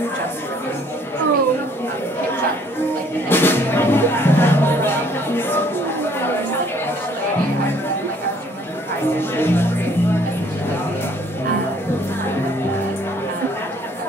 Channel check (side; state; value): both; normal; correlation 0.61